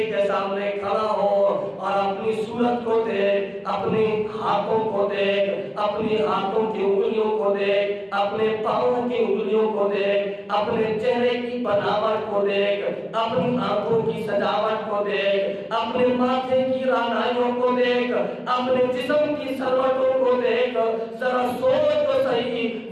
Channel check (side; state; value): both; identical; correlation 1.00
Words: کے سامنے کھڑا ہو اور اپنی صورت کو دیکھ، اپنے ہاتھوں کو دیکھ، اپنی ہاتھوں کی انگلیوں کو دیکھ، اپنے پاؤں کی انگلیوں کو دیکھ، اپنے چہرے کی بناوٹ کو دیکھ، اپنی آنکھوں کی سجاوٹ کو دیکھ، اپنے ماتھے کی رانائیوں کو دیکھ، اپنے جسم کی سلوٹوں کو دیکھ، ذرا سوچ تو صحیح،